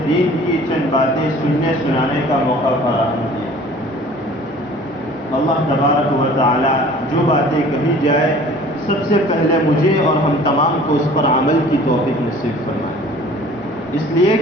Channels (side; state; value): both; normal; correlation 0.48